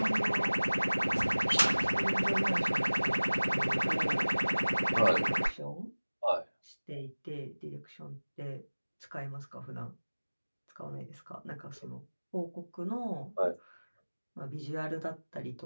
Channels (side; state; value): both; inverted; correlation -1.00